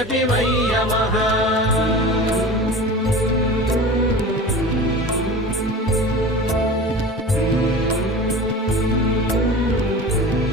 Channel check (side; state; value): both; normal; correlation 0.35